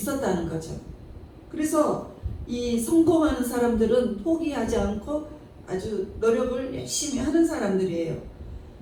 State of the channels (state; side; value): identical; both; correlation 1.00